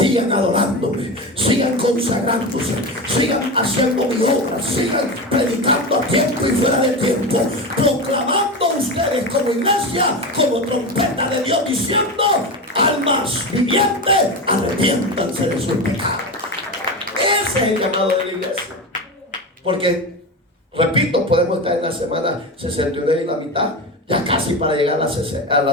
adorándome, sigan consagrándose, sigan haciendo mi obra, sigan predicando a tiempo y fuera de tiempo, proclamando ustedes como iglesia, como trompeta de Dios, diciendo: almas vivientes, arrepiéntanse de sus pecados. Ese es el llamado de la iglesia. Porque, repito, podemos estar en la semana 69 y la mitad, ya casi para llegar a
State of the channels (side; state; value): both; normal; correlation 0.21